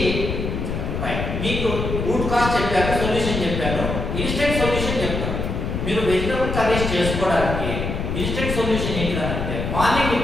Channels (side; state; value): left; noise; rumble, 3 dB below the sound